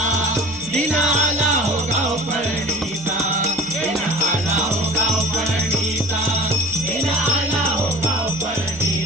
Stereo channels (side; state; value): right; noise; hum, 25 dB below the sound